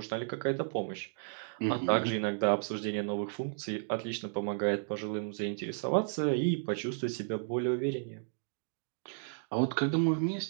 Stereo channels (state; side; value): silent; left; digital silence